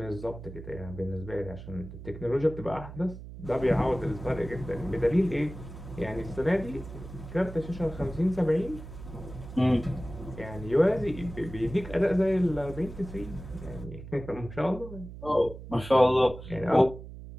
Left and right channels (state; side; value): noise; right; hum, 13 dB below the sound